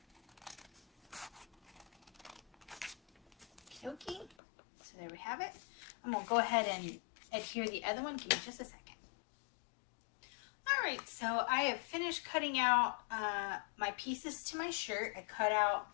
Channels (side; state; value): right; drops out; at 4.4 s